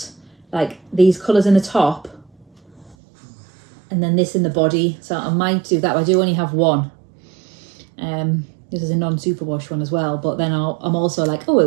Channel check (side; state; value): left; drops out; at 3.0 s